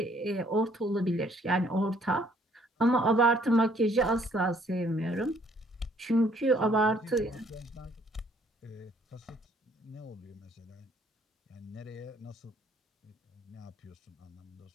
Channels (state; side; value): normal; both; correlation 0.63